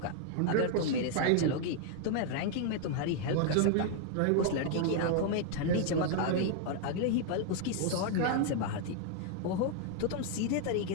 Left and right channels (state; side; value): different; both; correlation 0.00